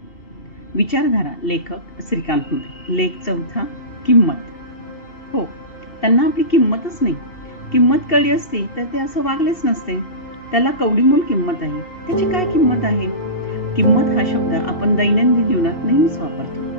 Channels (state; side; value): late; right; 2.7 ms